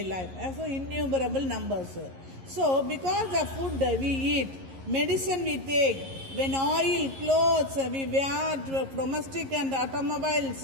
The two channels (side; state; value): left; late; 11 ms